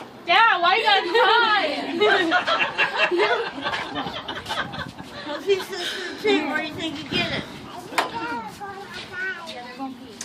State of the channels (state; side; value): identical; both; correlation 1.00